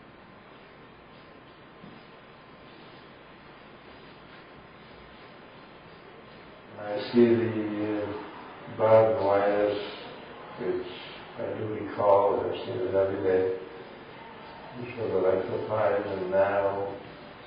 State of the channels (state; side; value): identical; both; correlation 1.00